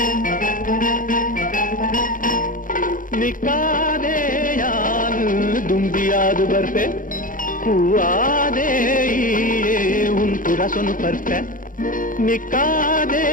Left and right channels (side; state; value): right; late; 0.39 ms